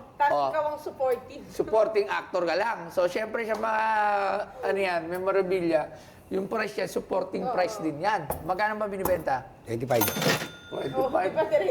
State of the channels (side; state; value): both; identical; correlation 1.00